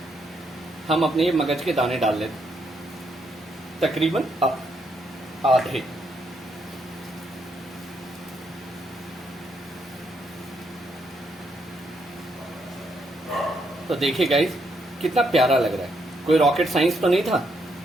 हम अपने मगज के दाने डाल लेते, तकरीबन आधे। तो देखिए गाइस, कितना प्यारा लग रहा है। कोई रॉकेट साइंस तो नहीं था।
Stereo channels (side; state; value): both; normal; correlation 0.76